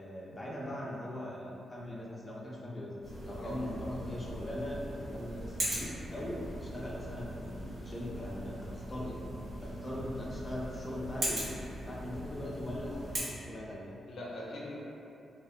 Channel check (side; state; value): both; normal; correlation 0.85